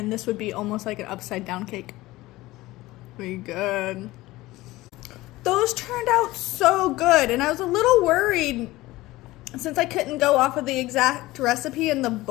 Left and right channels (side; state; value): right; quieter; 18.6 dB